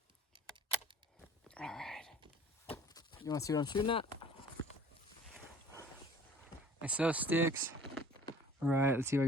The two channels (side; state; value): both; normal; correlation 0.49